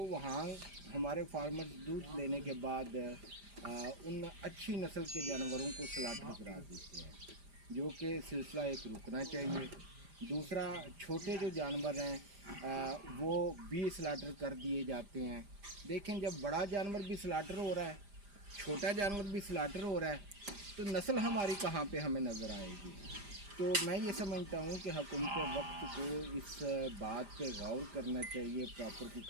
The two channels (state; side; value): late; left; 5.0 ms